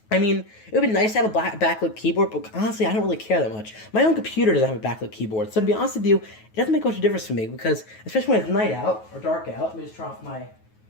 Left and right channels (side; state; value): right; late; 9.3 ms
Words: I mean, it would be nice to have a backlit keyboard, but honestly, I don't really care that much. My own computer doesn't have a backlit keyboard, so to be honest with you, it doesn't make much of a difference for me, because, especially when it's night out, or dark out, let me just turn off my...